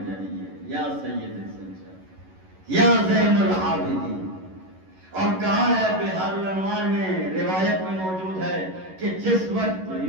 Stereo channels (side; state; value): left; late; 11 ms